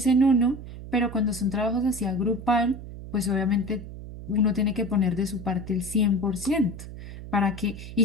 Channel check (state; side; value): noise; right; hum, 12 dB below the sound